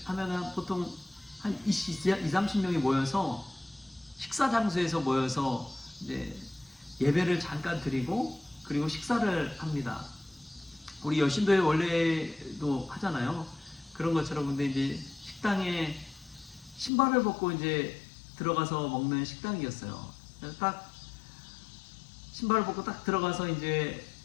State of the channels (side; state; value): right; drops out; at 16.9 s